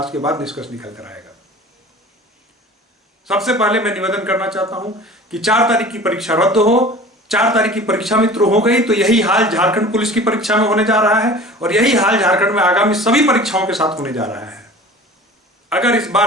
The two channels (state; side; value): normal; both; correlation 0.41